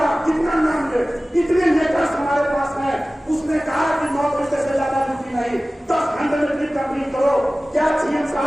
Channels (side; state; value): both; normal; correlation 0.97